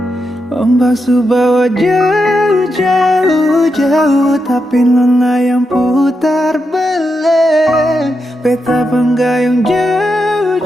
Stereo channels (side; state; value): both; normal; correlation 0.85